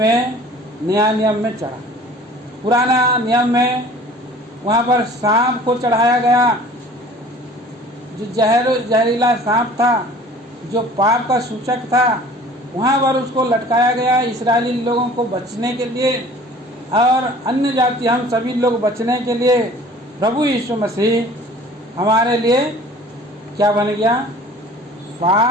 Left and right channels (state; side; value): normal; both; correlation 0.48